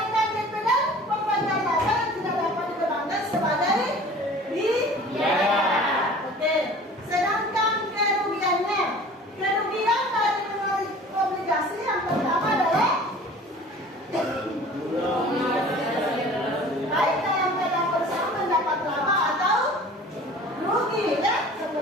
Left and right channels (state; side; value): normal; both; correlation 0.44